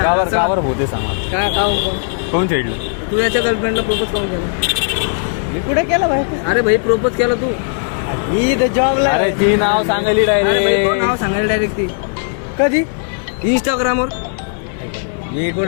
का बरं भूते सांग. काय कोण खेळलं? तू याच्या गर्लफ्रेंडला प्रपोज करून केला? मी कुठे केला भाई? अरे भाई प्रपोज केला तू जॉबला. अरे ती नाव सांगायली नाव डायरेक्ट. सांगायला डायरेक्ट ती कधी? इंस्टाग्रामवर. हे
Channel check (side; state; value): right; silent; 68 dB below the other